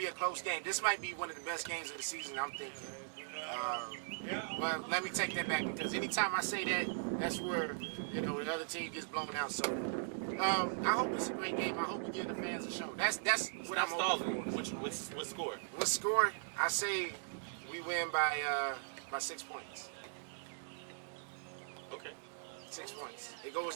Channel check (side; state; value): left; silent; digital silence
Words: a close game. This might be one of the best games of the season, I'm thinking. But let me take that back, because anytime I say that, that's where the other team gets blown out. So I hope it's a great game. I hope we give the fans a show. That's what I'm hoping for. What score? What score? I say we win by 6 points. Okay. 6 points. It goes